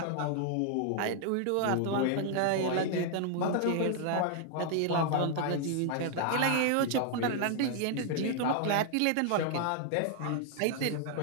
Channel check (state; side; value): different; both; correlation 0.00